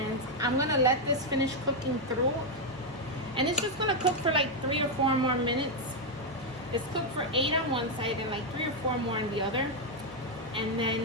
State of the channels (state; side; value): normal; both; correlation 0.02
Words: I'm going to let this finish cooking through. And it's just going to cook for like 3 or 4 more minutes. It's cooked for 8 on one side and like 3 or 4 more on the other. And